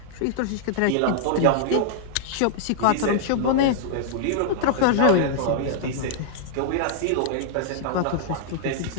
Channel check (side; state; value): both; different; correlation -0.01